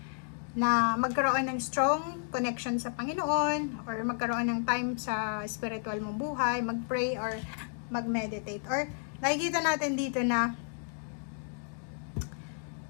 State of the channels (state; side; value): silent; right; 56 dB below the other